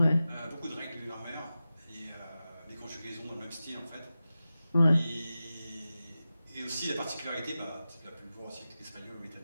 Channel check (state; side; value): inverted; both; correlation -0.94